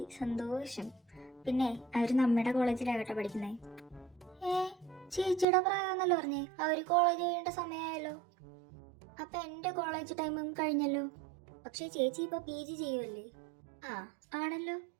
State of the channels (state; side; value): drops out; left; at 5.5 s